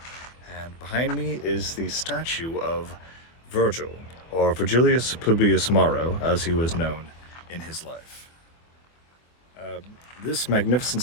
And behind me is the statue of Virgil, or Virgilius Publius Maro, as he was known in his life. This magnificent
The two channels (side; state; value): right; late; 24 ms